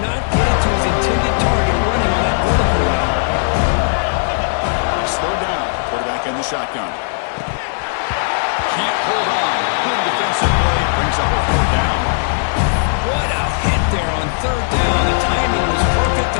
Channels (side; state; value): right; silent; digital silence